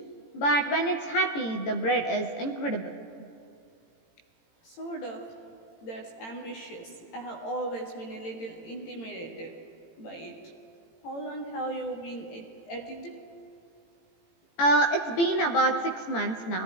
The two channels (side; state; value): right; late; 18 ms